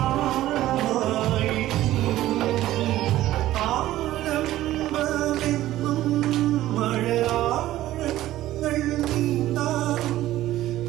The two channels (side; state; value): left; quieter; 14.7 dB